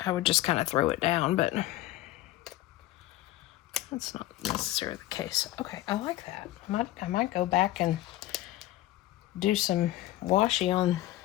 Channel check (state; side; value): quieter; right; 15.4 dB